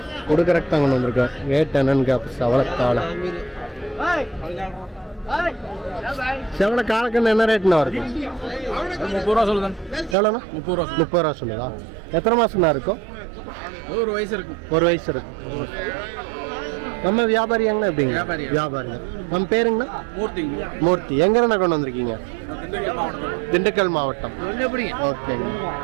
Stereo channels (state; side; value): drops out; left; at 10.2 s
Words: கொடுக்கறக்கு தான் கொண்டு வந்திருக்கேன். ரேட் என்னன்னு சவளக்காளை. செவல காலக்கண்ணு என்ன ரேட்னா வருது? 30 ரூபா சொல்லுதான். எவ்வளோண்ணா? 30 ரூபா. 30 ரூபா சொல்லுதா? எத்தனை மாசம்னா இருக்கும்? ஒரு வயசு இருக்கும். 1 வயசு இருக்கும். நம்ம வியாபாரியாங்கண்ணா? எப்படிங்க? வியாபாரிங்க. நம்ம பேருங்கண்ணா? மூர்த்தி. எங்கண்ணா கொண்டு வந்திருக்கீங்க? திண்டுக்கல் மாவட்டம். ஓகேங்க.